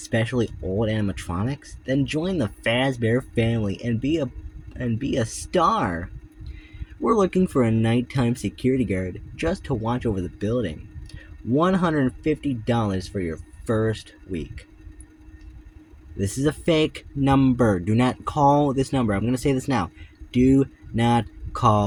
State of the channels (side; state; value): both; identical; correlation 1.00